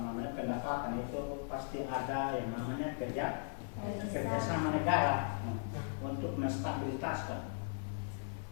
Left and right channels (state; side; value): silent; right; digital silence